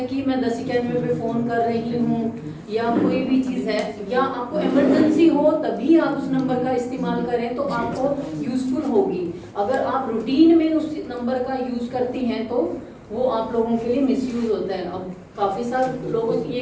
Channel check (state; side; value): identical; both; correlation 1.00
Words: कि मैं 1091 पे फ़ोन कर रही हूँ या कोई भी चीज़ है या आपको इमरजेंसी हो तभी आप उस नंबर का इस्तेमाल करें तो आपको यूज़फुल होगी। अगर आप रूटीन में उस नंबर का यूज़ करती हैं तो वो आप लोगों के लिए मिसयूज़ होता है। अब काफ़ी सारे लोग ये